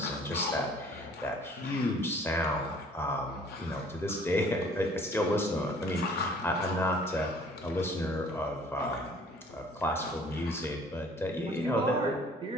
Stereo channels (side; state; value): both; normal; correlation 0.54